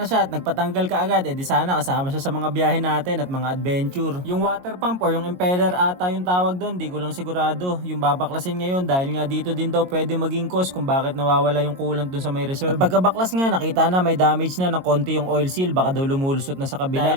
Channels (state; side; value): late; left; 22 ms